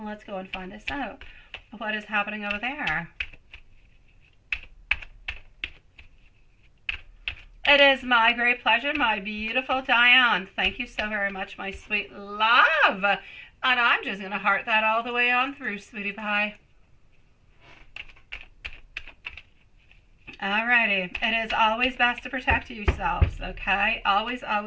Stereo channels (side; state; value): both; identical; correlation 1.00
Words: let's go and find this out. What is happening over there? It is my great pleasure, my beautiful Diane. Thank you so very much, my sweet love. And I'm just going to heart that all the way on through, sweetie pie. Alrighty. It is always best to protect yourselves, okay? Always,